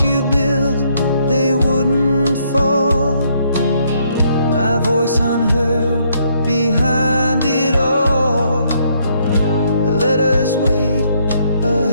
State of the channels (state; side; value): inverted; both; correlation -0.71